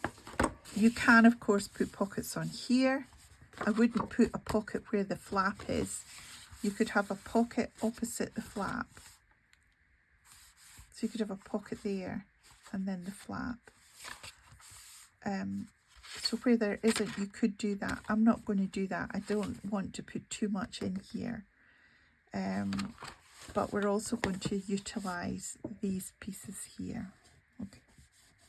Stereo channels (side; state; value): both; identical; correlation 1.00